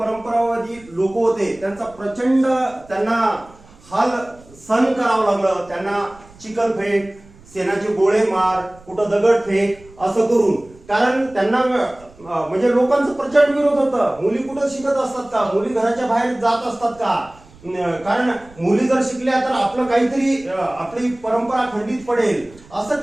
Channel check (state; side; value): noise; right; rumble, 25 dB below the sound